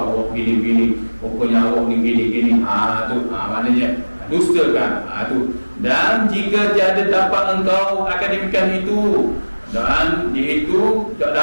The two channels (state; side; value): inverted; both; correlation -1.00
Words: awak gini-gini, pokoknya awak ni gini-gini, tu maknanya dustakan. Tu. Dan jika tiada dapat engkau akan demikian itu, dan itu tak